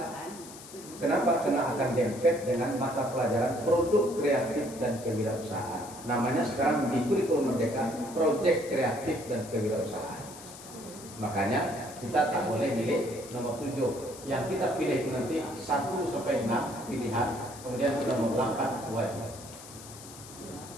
Kenapa? Karena akan dempet dengan mata pelajaran produk kreatif dan kewirausahaan. Namanya sekarang di kurikulum Merdeka proyek kreatif dan kewirausahaan. Makanya kita tak boleh milih nomor 7. Yang kita pilih itu nanti 1 sampai 6 pilihan, kemudian nomor 8 wajib.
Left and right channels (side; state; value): left; noise; hiss, 16 dB below the sound